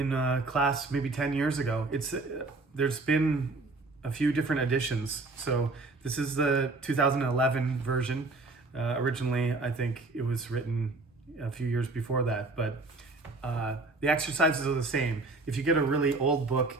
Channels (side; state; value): left; quieter; 3.4 dB